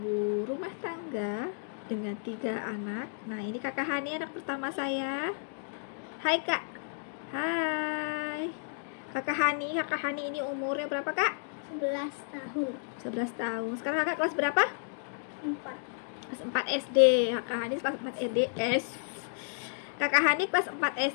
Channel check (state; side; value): silent; right; digital silence